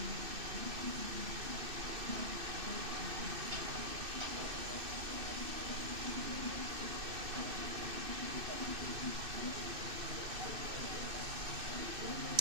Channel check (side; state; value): left; late; 2.6 ms